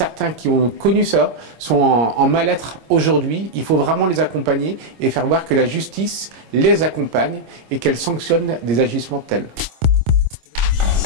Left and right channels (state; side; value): late; left; 26 ms